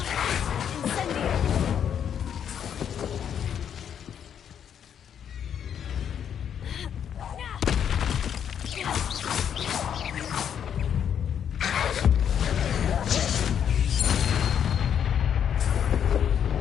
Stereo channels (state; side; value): quieter; right; 8.6 dB